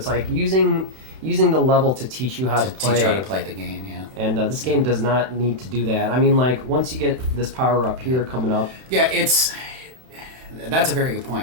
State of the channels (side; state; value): left; late; 31 ms